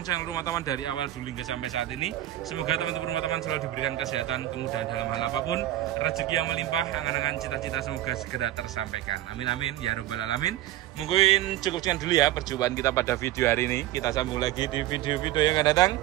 channel rumah taman dari awal dulu hingga sampai saat ini. Semoga teman-teman rumah taman selalu diberikan kesehatan, kemudahan dalam hal apapun, rezeki yang melimpah, angan-angan cita-cita semoga segera tersampaikan. Amin amin ya robbal alamin. Mungkin cukup sekian dulu ya perjumpaan kita pada video hari ini. Kita sambung lagi di video-video yang akan datang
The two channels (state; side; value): quieter; left; 14.0 dB